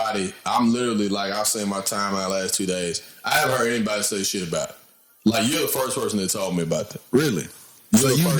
literally, like, I've seen my timeline last 2 days. I haven't heard anybody say shit about it. Like, you're the first person that told me about that. Really? So you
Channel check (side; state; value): both; identical; correlation 1.00